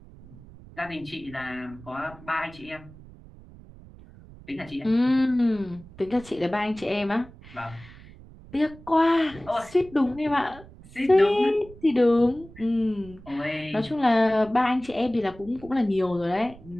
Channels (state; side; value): noise; right; rumble, 20 dB below the sound